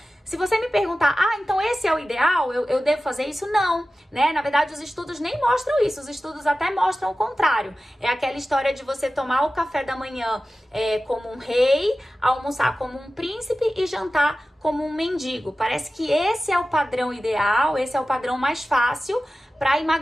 Se você me perguntar, então esse é o ideal, eu devo fazer isso? Não, né? Na verdade, os estudos nem mostram isso, os estudos até mostram o contrário. É aquela história de você tomar o café da manhã como um rei, almoçar como um príncipe e jantar como um mendigo. Parece que esse é o padrão ideal, esse é o padrão mais fácil para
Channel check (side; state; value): both; normal; correlation 0.95